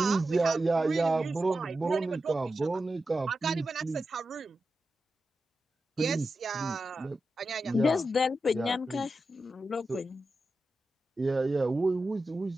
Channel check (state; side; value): normal; both; correlation 0.91